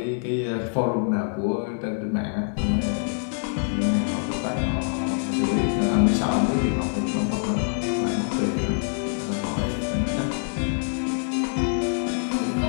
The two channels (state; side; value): silent; right; 62 dB below the other